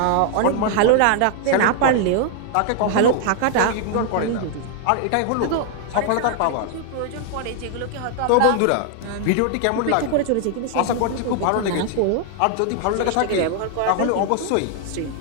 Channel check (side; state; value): both; different; correlation 0.00